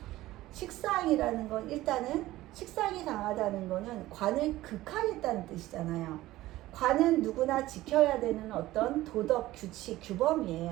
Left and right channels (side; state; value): left; quieter; 16.5 dB